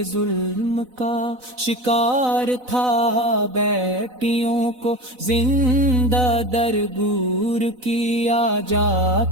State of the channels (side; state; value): left; late; 4.0 ms